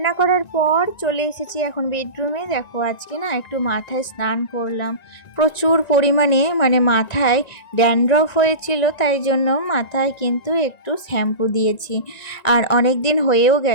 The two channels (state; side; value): late; right; 1.9 ms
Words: করার পর চলে এসেছি এখন বেডরুমে। দেখো আজকে না একটু মাথায় স্নান করলাম, প্রচুর পরিমাণে মানে মাথায় ড্যান্ড্রফ হয়েছিল, তাই জন্য মাথায় কিন্তু একটু শ্যাম্পু দিয়েছি। আর অনেক দিন হয়েও